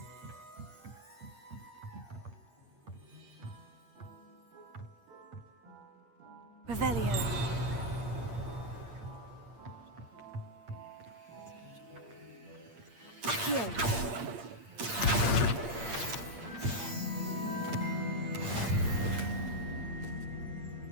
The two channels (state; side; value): late; left; 8.6 ms